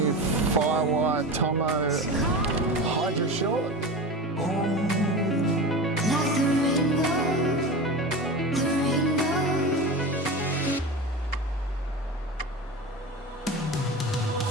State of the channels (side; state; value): both; normal; correlation 0.28